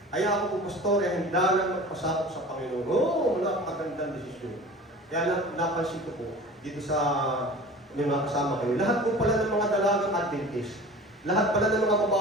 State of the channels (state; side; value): normal; both; correlation 0.39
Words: Ay, ako po, Pastor, ay handa na magpasakop sa Panginoon. Oo, napakagandang desisyon. Kaya napansin ko po, dito sa yung mga kasama kayo, lahat po pala ng mga dalagang Adventist, lahat pala ng mga